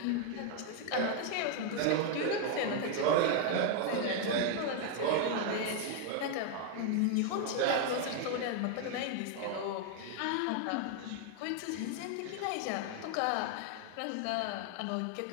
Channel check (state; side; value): different; both; correlation 0.00